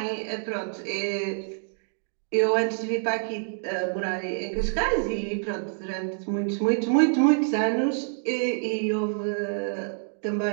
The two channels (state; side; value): silent; left; digital silence